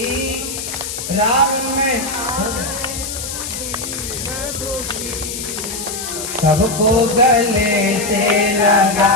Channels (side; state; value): left; noise; hiss, 6 dB below the sound